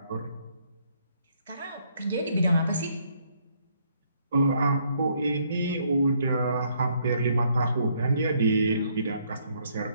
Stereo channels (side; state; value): both; inverted; correlation -0.69